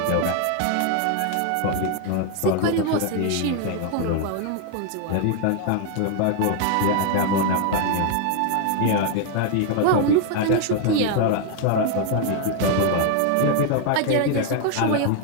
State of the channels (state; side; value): different; both; correlation 0.01